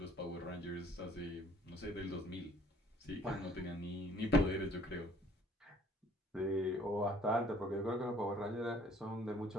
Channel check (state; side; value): normal; both; correlation 0.57